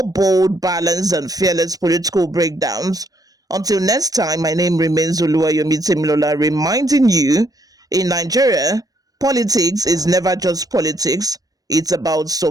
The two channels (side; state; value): left; late; 0.18 ms